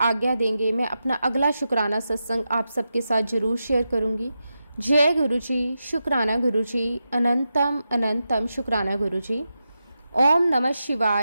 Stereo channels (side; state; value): both; inverted; correlation -0.89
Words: देंगे मैं अपना अगला शुक्राना सत्संग आप सबके साथ जरूर शेयर करूंगी। जय गुरुजी, शुक्राना गुरुजी, अनंतम अनंतम शुक्राना गुरुजी। ओम नमः